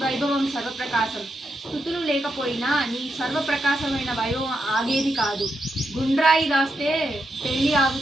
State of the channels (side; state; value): both; normal; correlation 0.84